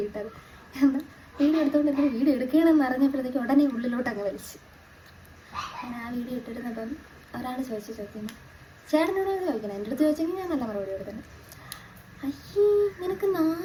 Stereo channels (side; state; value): both; identical; correlation 1.00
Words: ഇട്ടത്. എന്നാൽ വീഡിയോ എടുത്തുകൊണ്ട് വീഡിയോ എടുക്കണമെന്ന് അറിഞ്ഞപ്പോഴത്തേക്ക് ഉടനെ ഉള്ളിലോട്ട് അങ്ങ് വലിച്ചു. ഞാൻ ആ വീഡിയോ ഇട്ടിരുന്നപ്പം ഒരാൾ ചോദിക്കുന്നു, ചേട്ടനോട് ചോദിക്കണം. എൻ്റെ അടുത്ത് ചോദിച്ചെങ്കിൽ ഞാൻ നല്ല മറുപടി കൊടുക്കുന്നത്. അയ്യേ നിനക്ക്